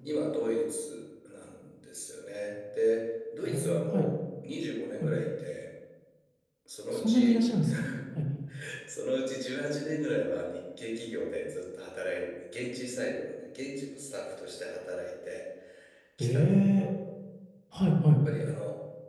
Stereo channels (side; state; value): both; identical; correlation 1.00